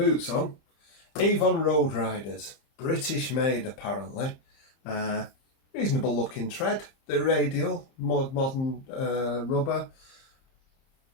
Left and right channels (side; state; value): right; late; 30 ms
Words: on. Avon Road Riders, British made apparently. Reasonable looking tread. The radial, modern rubber.